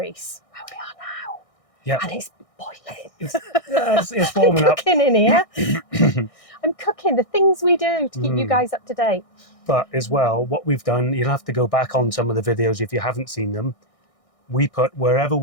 where we are now. Yeah. And it's boiling. It's warming up. I'm cooking in here. I'm cooking the things we do to keep you guys up to date. But as well, what we've done, you'll have to go back on some of the videos if you haven't seen them. We put wherever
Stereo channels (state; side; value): late; right; 1.6 ms